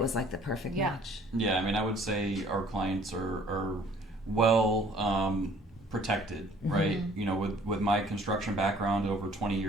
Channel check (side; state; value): both; normal; correlation 0.56